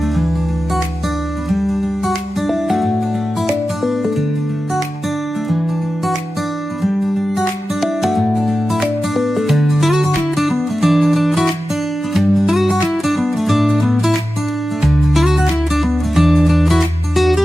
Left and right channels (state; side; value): normal; both; correlation 0.93